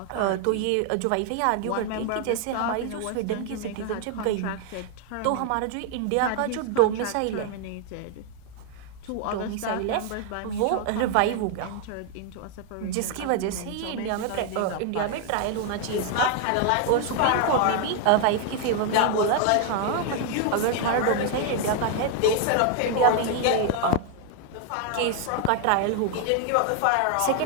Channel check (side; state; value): both; different; correlation 0.00